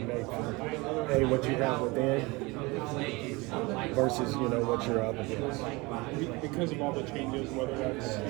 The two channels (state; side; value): quieter; left; 24.6 dB